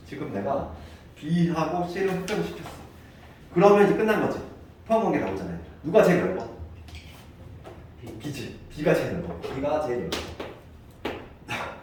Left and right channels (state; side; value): identical; both; correlation 1.00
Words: 지금 내가 B하고 C를 확정시켰어. 그러면 이제 끝난 거지. 포함관계 나오잖아요. 누가 제일 넓어? B지. B가 제일 넓어. B가 제일 넓어.